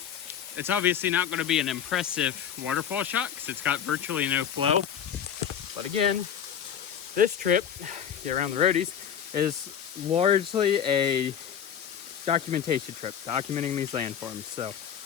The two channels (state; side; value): quieter; right; 8.8 dB